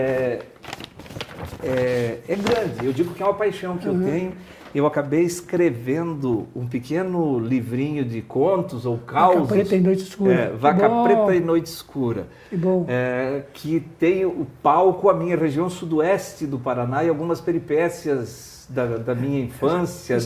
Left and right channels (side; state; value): both; identical; correlation 1.00